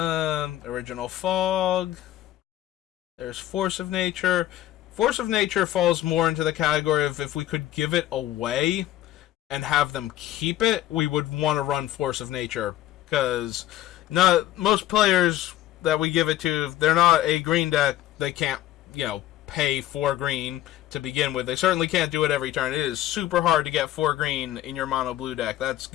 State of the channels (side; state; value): right; quieter; 13.8 dB